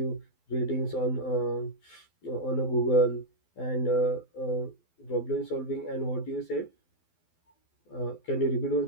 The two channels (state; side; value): late; right; 12 ms